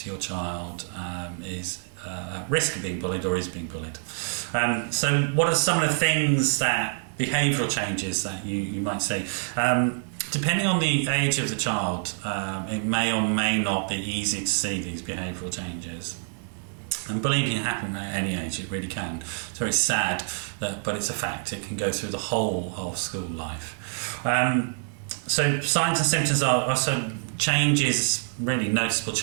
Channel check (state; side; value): silent; left; 57 dB below the other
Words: your child is at risk of being bullied or is being bullied. So what are some of the things behavioural changes that you might see? Depending on the age of the child, it may or may not be easy to see these behavioural changes. And bullying can happen at any age, it really can. It's very sad, but it's a fact. It can go through the whole of school life. So signs and symptoms are also changes, really noticeable